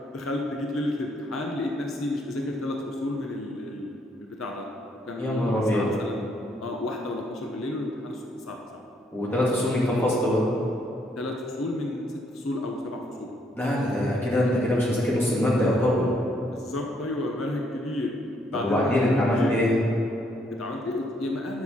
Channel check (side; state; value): both; normal; correlation 0.71